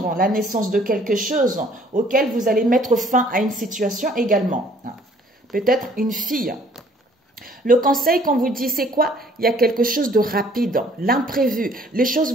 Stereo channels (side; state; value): both; normal; correlation 0.59